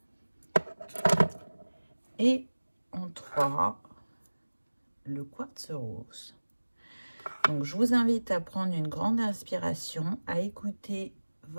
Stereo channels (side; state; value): both; inverted; correlation -1.00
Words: Et en 3, le quartz rose. Donc, je vous invite à prendre une grande inspiration, à écouter